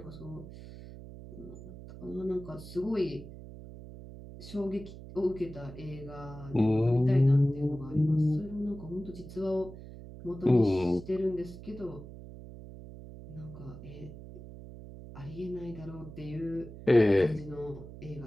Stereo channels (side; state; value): right; noise; hum, 14 dB below the sound